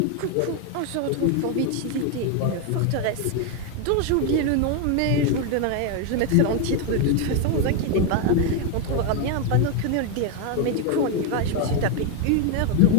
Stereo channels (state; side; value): different; both; correlation 0.01